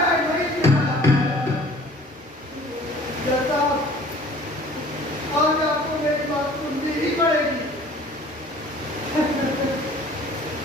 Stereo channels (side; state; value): both; normal; correlation 0.50